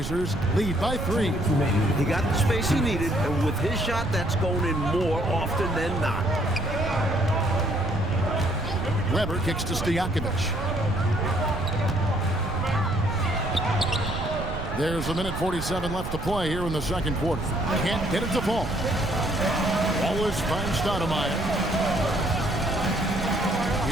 lead by 3. He got the space he needed, and with his shot, that's going in more often than not. Weber kicks to Stojakovic. There's a minute 47 left to play here in the second quarter. Can't get it to fall. Wallace finds Stoudemire.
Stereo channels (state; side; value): noise; right; rumble, 6 dB below the sound